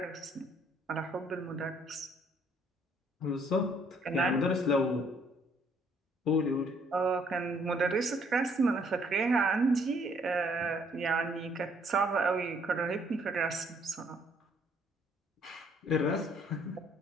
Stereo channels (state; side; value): normal; both; correlation 0.65